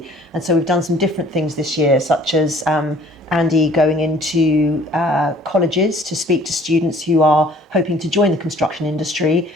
And so we've done some different things this year, such as Andy going into colleges to speak to students who are hoping to join the construction industry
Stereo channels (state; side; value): normal; both; correlation 0.54